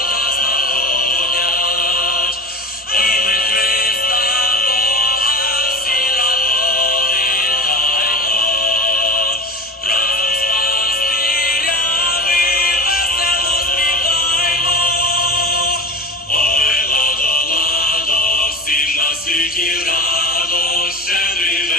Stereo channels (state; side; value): normal; both; correlation 0.32